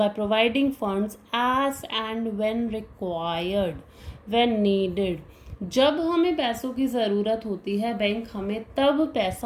providing funds as and when required, when needed. जब हमें पैसों की ज़रूरत होती है बैंक हमें तब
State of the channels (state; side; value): identical; both; correlation 1.00